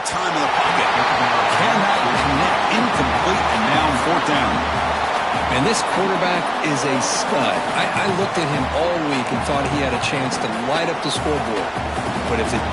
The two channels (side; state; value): both; identical; correlation 1.00